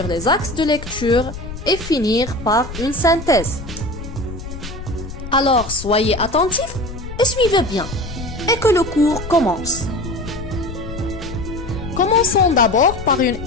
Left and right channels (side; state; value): left; noise; rumble, 10 dB below the sound